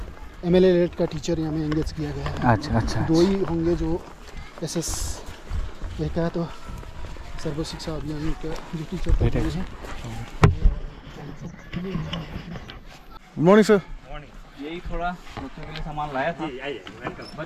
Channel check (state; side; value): identical; both; correlation 1.00